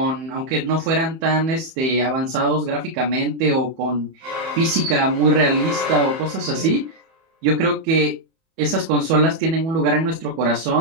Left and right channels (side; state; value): left; late; 31 ms